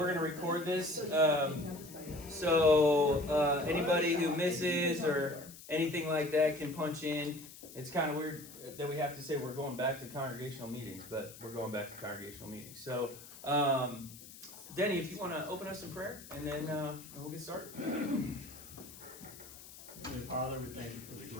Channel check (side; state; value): left; noise; hiss, 17 dB below the sound